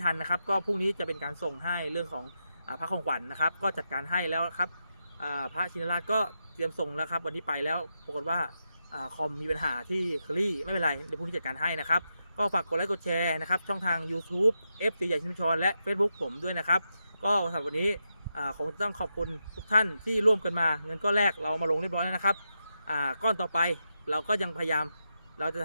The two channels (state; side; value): inverted; both; correlation -0.86